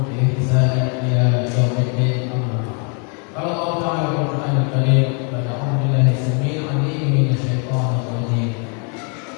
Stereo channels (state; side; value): quieter; right; 37.8 dB